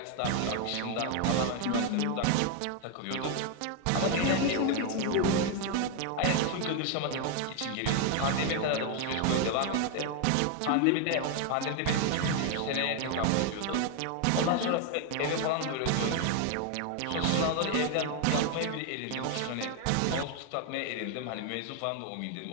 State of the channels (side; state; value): both; different; correlation 0.01